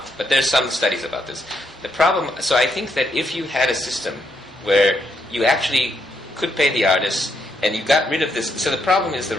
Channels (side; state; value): both; normal; correlation 0.77